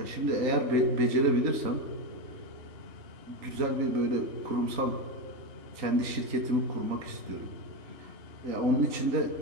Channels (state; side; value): late; left; 3.9 ms